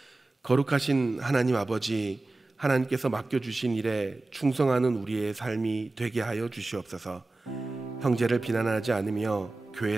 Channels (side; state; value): left; quieter; 3.1 dB